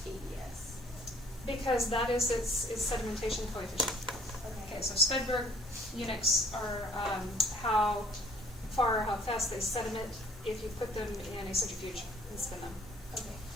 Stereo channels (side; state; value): both; normal; correlation 0.55